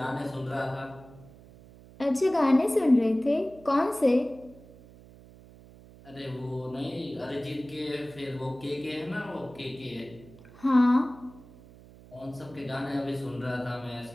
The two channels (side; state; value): right; noise; hum, 21 dB below the sound